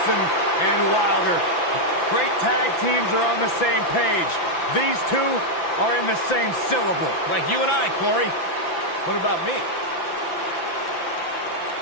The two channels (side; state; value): right; late; 5.9 ms